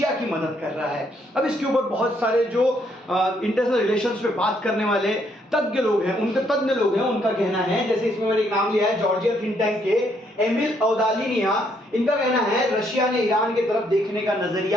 की मदद कर रहा है। अब इसके ऊपर बहुत सारे जो इंटरनेशनल रिलेशंस पे बात करने वाले तज्ञ लोग हैं, उनका कहना है, जैसे इसमें मैंने एक नाम लिया है जॉर्जिया थिंक टैंक के एमिल औदालिनिया। इनका कहना है रशिया ने ईरान की तरफ देखने का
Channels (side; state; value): both; normal; correlation 0.71